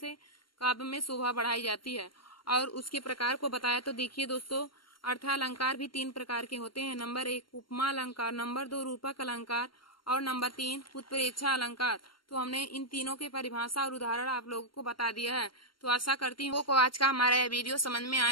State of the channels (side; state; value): right; late; 0.73 ms